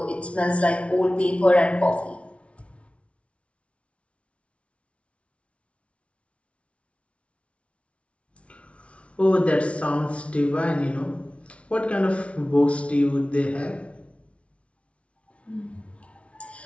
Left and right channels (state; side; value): late; right; 0.062 ms